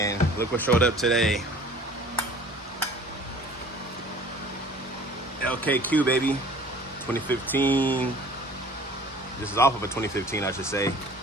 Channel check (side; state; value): both; normal; correlation 0.48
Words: look what showed up today. LKQ, baby, 2015. This is off of a 2015, I should say.